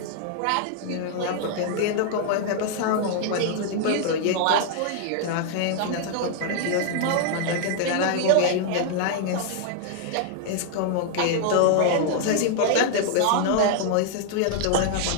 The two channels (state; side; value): different; both; correlation 0.00